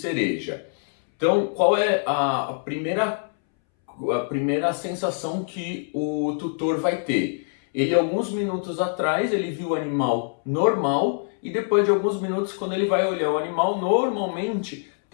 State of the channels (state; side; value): silent; right; 62 dB below the other